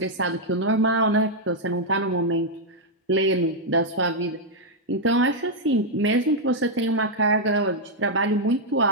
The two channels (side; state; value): both; normal; correlation -0.03